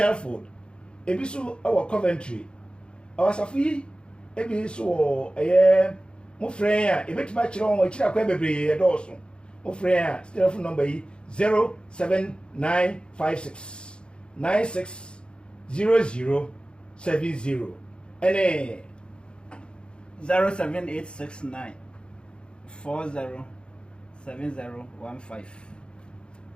ebi so wo Coventry awasafi ebi so mo frɛ a ebetima kire wo kira kwan bebre edoso mo frɛ a telephone number yi 07956 960070 ene 07869 407015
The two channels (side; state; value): right; late; 0.054 ms